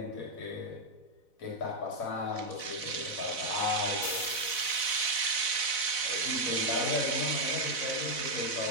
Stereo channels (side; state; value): right; late; 4.0 ms